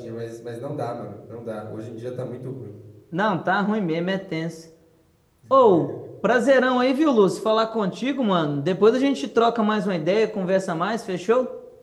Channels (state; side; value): identical; both; correlation 1.00